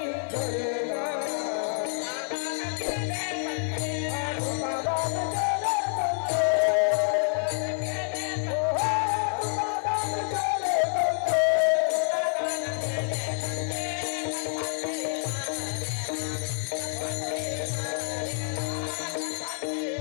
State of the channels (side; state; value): right; silent; digital silence